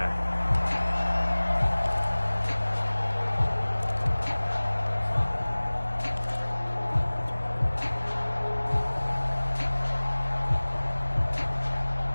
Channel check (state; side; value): inverted; both; correlation -1.00